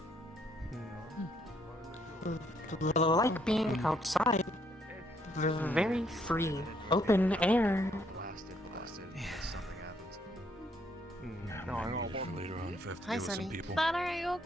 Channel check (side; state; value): both; normal; correlation 0.70